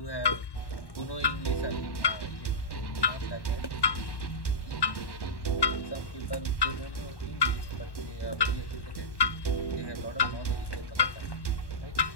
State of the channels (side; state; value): right; late; 1.1 ms